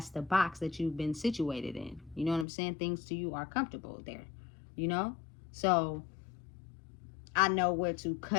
the box that you've been situated in. You know what I'm saying? Things to you are comfortable there, you know? So I know where to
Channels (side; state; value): right; drops out; at 2.5 s